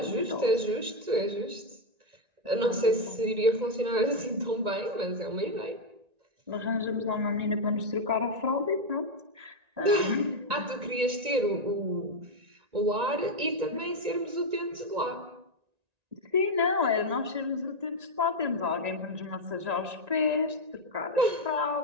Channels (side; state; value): left; late; 1.9 ms